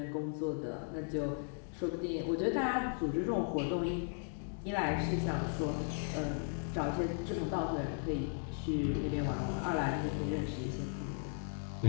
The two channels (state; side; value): silent; right; 54 dB below the other